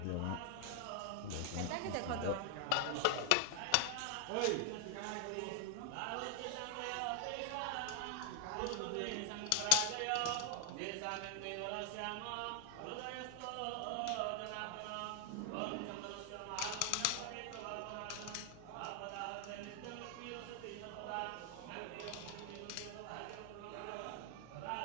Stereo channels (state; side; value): different; both; correlation 0.00